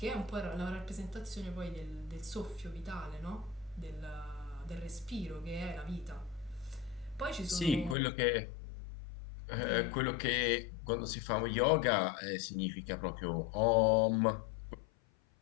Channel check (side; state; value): right; drops out; at 8.0 s